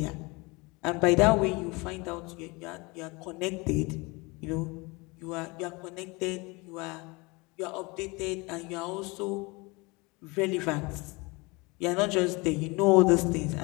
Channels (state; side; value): quieter; right; 26.2 dB